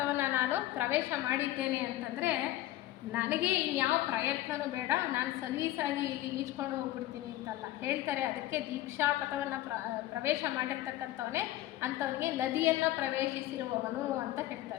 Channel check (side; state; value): right; quieter; 15.2 dB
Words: ನಾನು ಪ್ರವೇಶ ಮಾಡಿದ್ದೇನೆ ಅಂತಂದರೆ ನನಗೆ ಇನ್ಯಾವ ಪ್ರಯತ್ನವೂ ಬೇಡ, ನಾನು ಸಲೀಸಾಗಿ ಇಲ್ಲಿ ಈಜ್ಕೊಂಡು ಹೋಗ್ಬಿಡ್ತೀನಿ ಅಂತಲ್ಲ ಹೇಳ್ತಾರೆ. ಅದಕ್ಕೆ ದೀಕ್ಷಾಪಥವನ್ನು ಪ್ರವೇಶ ಮಾಡಿರ್ತಕ್ಕಂಥವನೇ ಅಂಥವನಿಗೆ ನದಿಯನ್ನು ಪ್ರವೇಶಿಸಿರುವವನು ಅಂತ